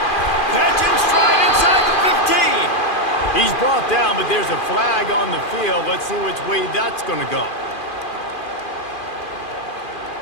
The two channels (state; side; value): late; right; 2.4 ms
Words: Catch and stride inside the 15. He's brought down, but there's a flag on the field. Let's see which way that's gonna go.